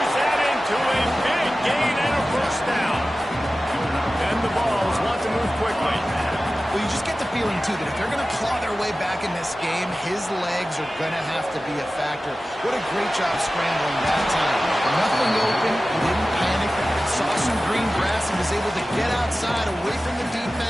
that into a big gain and a first down. And the Vols want to move quickly. Well, you just get the feeling, too, that if they're going to claw their way back in this game, his legs are going to have to be a factor. What a great job scrambling that time. Nothing open, he didn't panic, saw some green grass and was able to get outside, away from the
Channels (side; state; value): both; normal; correlation 0.96